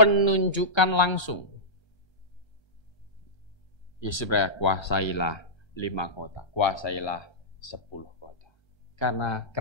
langsung. Yesus berkata, kuasailah 5 kota, kuasailah 10 kota. Karena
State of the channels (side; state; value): right; late; 1.3 ms